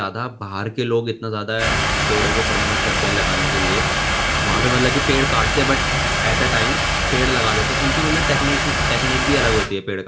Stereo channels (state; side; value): identical; both; correlation 1.00